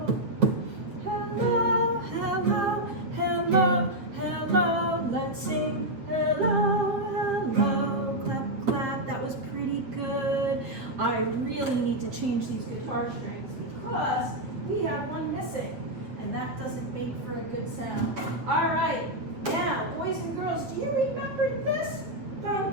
Hello, hello, hello, hello. Let's sing hello, hello, clap, clap. That was pretty good. I really need to change these guitar strings because we have one missing, and that doesn't make for a good sound. All right, now, boys and girls, do you remember this?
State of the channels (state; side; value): late; left; 8.1 ms